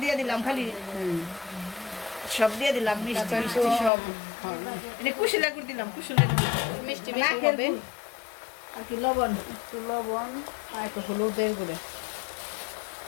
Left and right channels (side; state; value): right; drops out; at 3.9 s